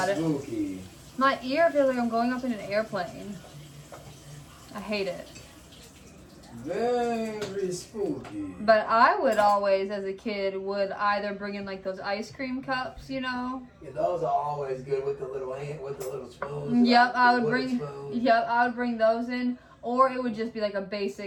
spooky. it. My ear feels like I'm going up in an airplane. I hate it. Very spooky. But I would always, as a kid, would either bring in like those ice cream cups, you know. Yeah, those are always good with the little spoons. Yep, I would wooden bring. spoons. Yep, I would bring those in, or it would just be like a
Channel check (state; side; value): identical; both; correlation 1.00